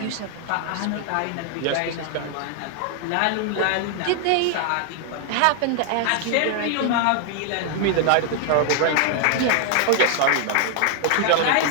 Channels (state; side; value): different; both; correlation 0.00